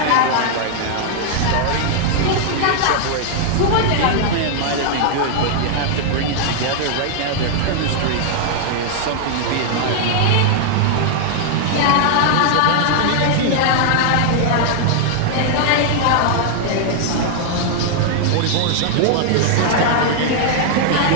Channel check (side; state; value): both; different; correlation -0.01